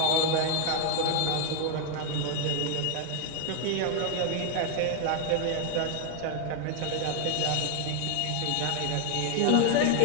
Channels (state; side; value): different; both; correlation 0.00